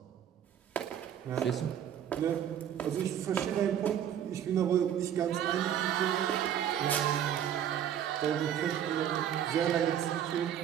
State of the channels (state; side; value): quieter; left; 9.8 dB